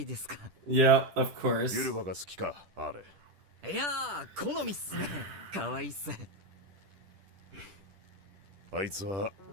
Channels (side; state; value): left; late; 10 ms